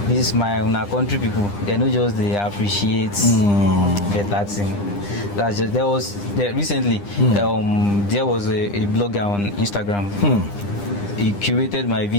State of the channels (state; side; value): late; right; 9.9 ms